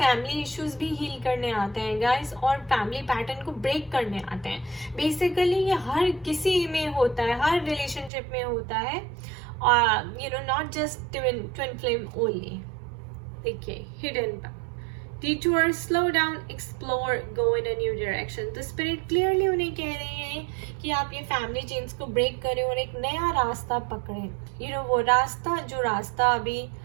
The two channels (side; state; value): left; drops out; at 8.1 s